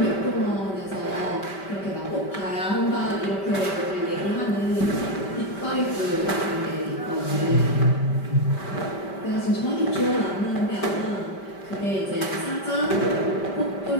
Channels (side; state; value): right; late; 5.1 ms